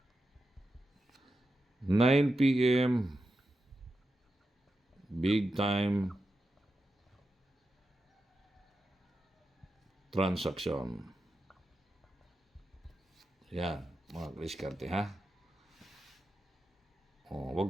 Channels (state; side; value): normal; both; correlation 0.89